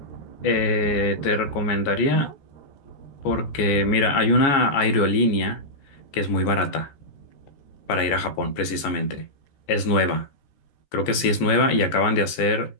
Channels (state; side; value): late; right; 14 ms